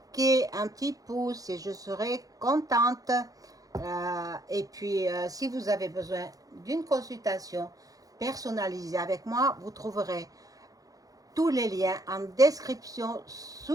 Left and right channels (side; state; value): left; late; 0.17 ms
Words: un petit pouce et je serai contente. Et puis, si vous avez besoin d'une consultation personnalisée avec moi, vous trouverez tous les liens en description